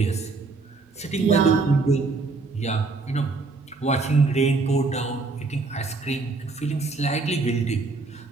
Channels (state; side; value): quieter; left; 3.9 dB